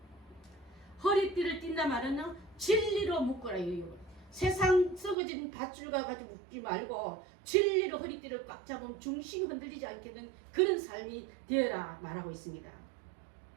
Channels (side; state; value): left; drops out; at 5.2 s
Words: 허리띠를 띈다 말은 진리로 묶어라. 세상 썩어진 밧줄과 가지고 묶지 말고 진리로 허리띠를 꽉 잡으면 중심이 흔들리지 않겠는 그런 삶이 되어라 말하고 있습니다.